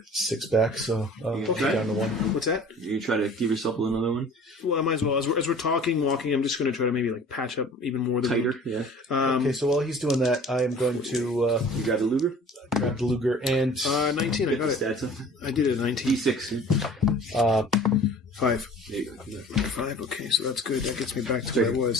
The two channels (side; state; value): both; normal; correlation 0.46